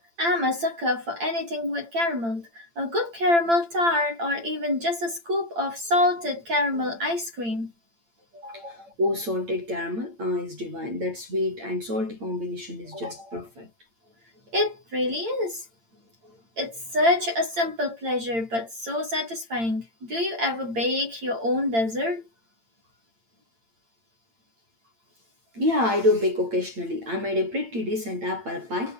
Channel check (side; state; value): left; late; 8.8 ms